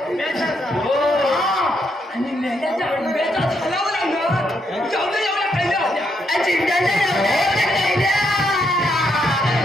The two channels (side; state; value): both; normal; correlation 0.77